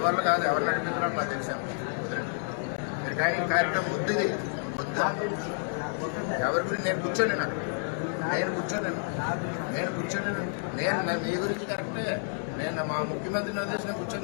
వల్ల కాదు, ఎవరు నడిపిస్తున్నారో నాకు తెలిసాను. మీరు కానీ కార్యక్రమం వద్దు, ఇది వద్దు. ఎవరి గురించి నేను కూర్చోలేను. అక్కడ నేను కూర్చోలేను. నేను మీ గురించి కరెక్టే. నేను మా ముఖ్యమంత్రిని వదిలేసి నేను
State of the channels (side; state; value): right; silent; digital silence